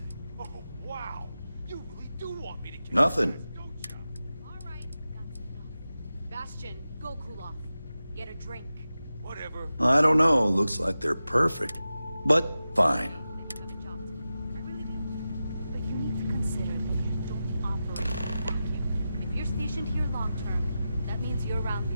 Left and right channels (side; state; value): both; inverted; correlation -0.92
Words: Oh, wow. You really do want me to kill Nothing. Bastion, go cool off. Get a drink. Whatever. I don't know. Looks like they're perfect. But fine. But you need to consider that you don't operate in a vacuum. If you're stationed here long term, that means you're around